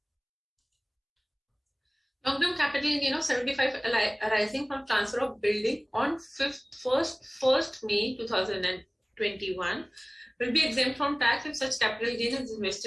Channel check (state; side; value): identical; both; correlation 1.00